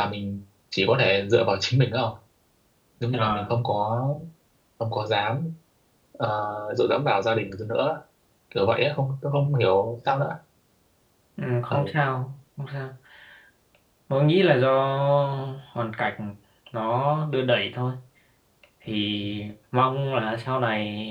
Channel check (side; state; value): both; identical; correlation 1.00